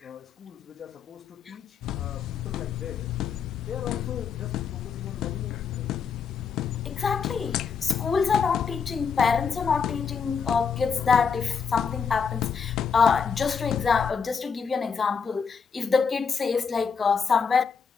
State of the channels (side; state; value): right; quieter; 6.2 dB